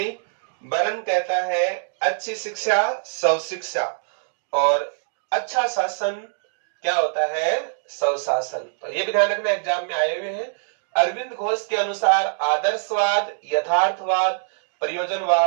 बरन कहता है अच्छी शिक्षा सब शिक्षा और अच्छा शासन क्या होता है सब शासन। तो ये भी ध्यान रखना, एग्जाम में आए हुए हैं। अरविंद घोष के अनुसार आदर्शवाद, यथार्थवाद,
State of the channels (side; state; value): left; silent; digital silence